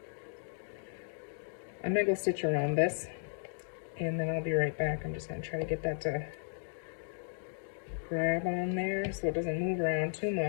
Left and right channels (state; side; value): silent; right; digital silence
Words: I'm gonna go stitch around this, and then I'll be right back. I'm just gonna try to get that to grab on there so it doesn't move around too